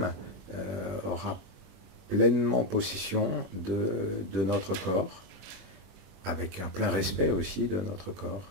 aura pleinement possession de notre corps, avec un plein respect aussi de notre corps.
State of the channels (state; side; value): late; left; 21 ms